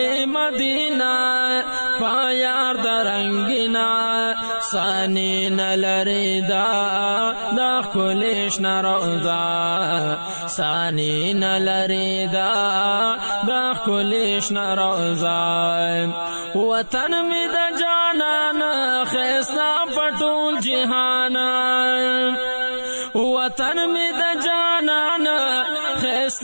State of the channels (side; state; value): both; inverted; correlation -1.00